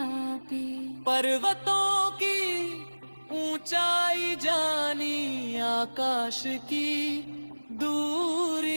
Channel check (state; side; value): inverted; both; correlation -1.00